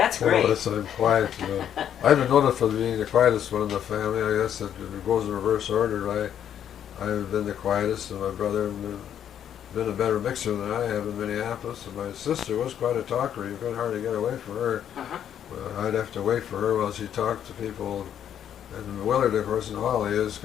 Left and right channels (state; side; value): quieter; right; 9.6 dB